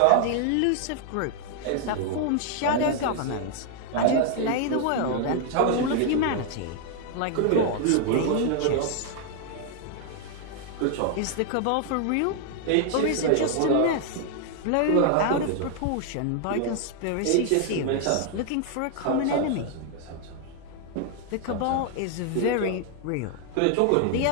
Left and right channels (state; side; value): different; both; correlation 0.00